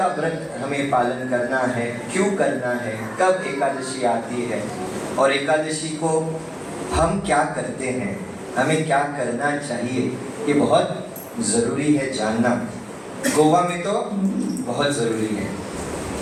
व्रत हमें पालन करना है, क्यों करना है, कब एकादशी आती है और एकादशी को हम क्या करते हैं, हमें क्या करना चाहिए, ये बहुत ज़रूरी है जानना। गोवा में तो बहुत ज़रूरी है,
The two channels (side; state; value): both; identical; correlation 1.00